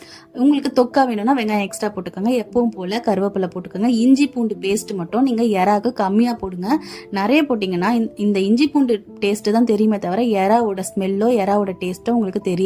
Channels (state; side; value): identical; both; correlation 1.00